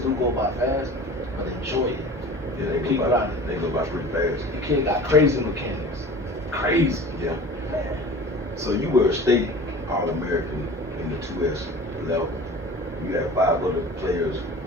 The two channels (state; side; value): normal; both; correlation 0.40